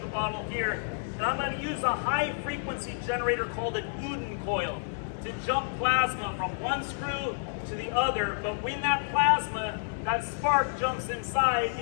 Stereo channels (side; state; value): right; silent; digital silence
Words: the bottle here. And I'm going to use a high frequency generator called an Uden coil to jump plasma from one screw to the other. But when that plasma, that spark jumps inside,